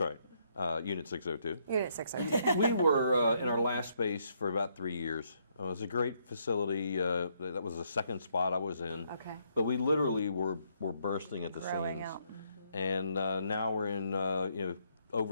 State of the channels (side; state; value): both; inverted; correlation -0.73